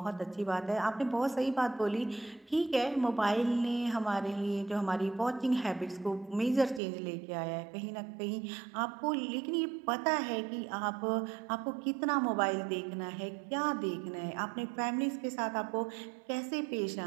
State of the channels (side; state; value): left; drops out; at 6.8 s